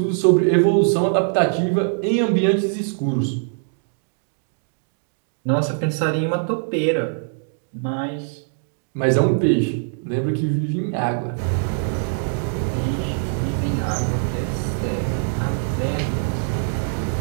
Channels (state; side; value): silent; left; digital silence